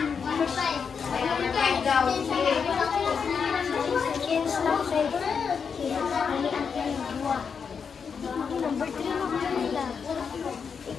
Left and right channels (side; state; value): right; quieter; 6.2 dB